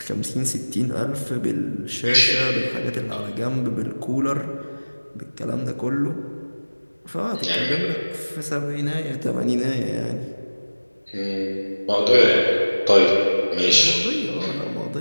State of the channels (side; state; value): both; inverted; correlation -1.00